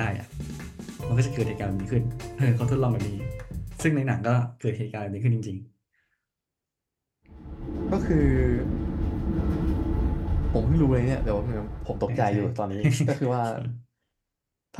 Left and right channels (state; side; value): identical; both; correlation 1.00